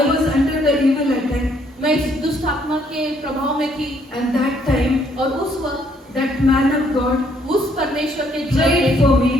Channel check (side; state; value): both; normal; correlation 0.67